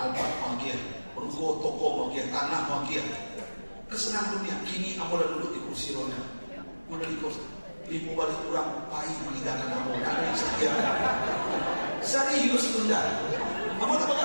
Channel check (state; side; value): inverted; both; correlation -1.00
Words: mau kian, ruko toko mau kian, tanah mau kian. Kesenangan dunia. Kini ambo udah duduk di kursi roda. Udah di kursi. Ibu balik kurang pahit meninggalkan ambo. Ada yang setia. Serius bunda. Ambo tak